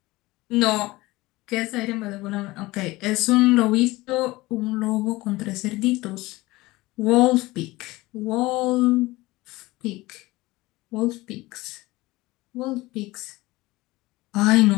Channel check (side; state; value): right; quieter; 20.0 dB